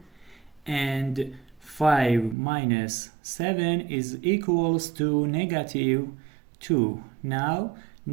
and 5 minus 7 is equals to negative 2. Now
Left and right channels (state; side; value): drops out; left; at 2.4 s